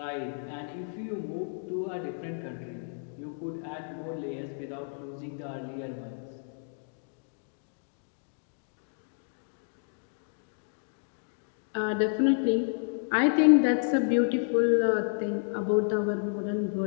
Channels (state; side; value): silent; right; digital silence